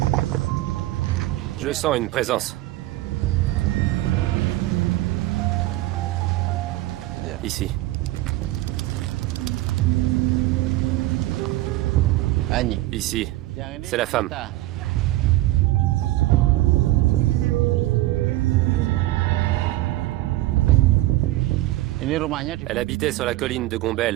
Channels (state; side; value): quieter; left; 17.1 dB